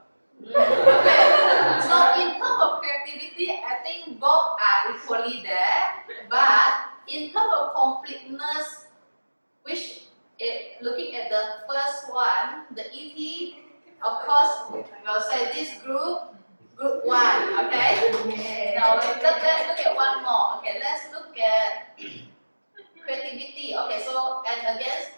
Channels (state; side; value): inverted; both; correlation -1.00